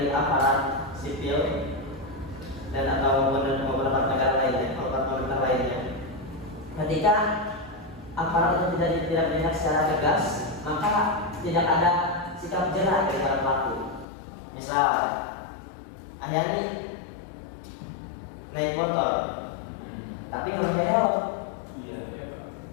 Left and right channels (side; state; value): right; drops out; at 14.1 s